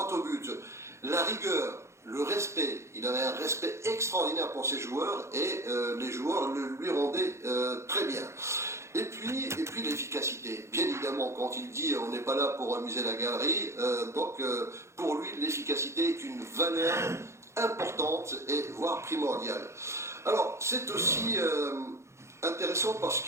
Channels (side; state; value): left; late; 0.13 ms